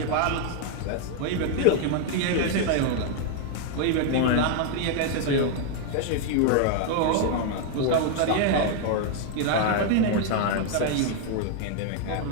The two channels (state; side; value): different; both; correlation 0.00